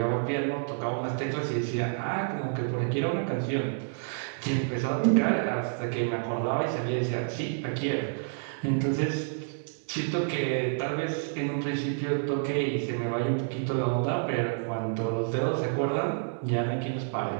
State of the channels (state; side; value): silent; left; 59 dB below the other